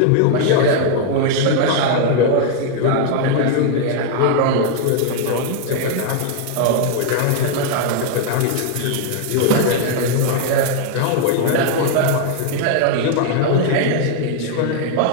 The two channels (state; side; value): different; both; correlation 0.00